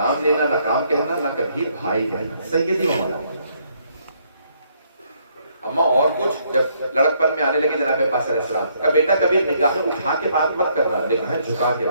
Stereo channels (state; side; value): inverted; both; correlation -0.70